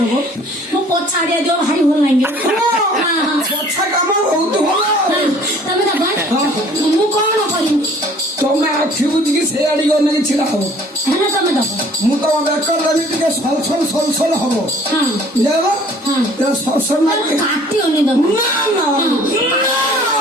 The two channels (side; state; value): both; normal; correlation 0.53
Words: ମୁଁ ପଛାଡିଆ ଦିଅ ଭାରି ଭଲ ଲାଗିବ ହଁ ହଁ ପଛା କାମ ବହୁତ ଭଲ ତମେ ଦବ ମୁଁ କଣ କରିବି ତମେ ଆଖି ବୁଝିକି ସେ ଆଡିକି ଅନେଇକି ଛିଡା ହବ ହେଲେ ତମେ ଦବ ମୁଁ ତମ ବେକର ଦେବି ଟିକେ ସଲସଲ ହବ ହଁ ଜାଣିଲ ହଁ ସଲସଲ ନା ମତେ କାଟିବନି ଦବ ନା